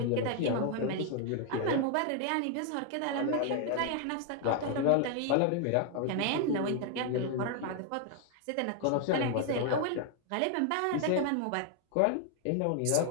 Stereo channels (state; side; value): different; both; correlation 0.00